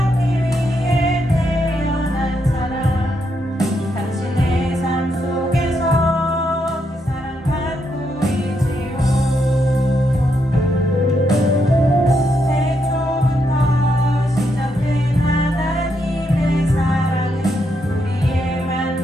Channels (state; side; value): normal; both; correlation 0.79